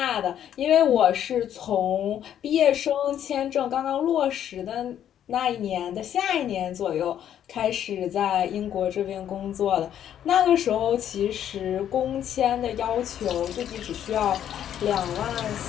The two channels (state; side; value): quieter; right; 10.2 dB